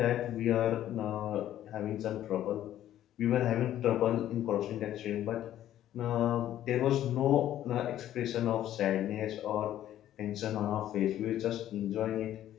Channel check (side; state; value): right; quieter; 12.2 dB